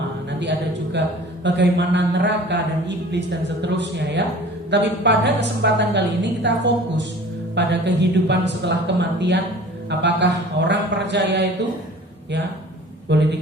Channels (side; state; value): both; normal; correlation 0.45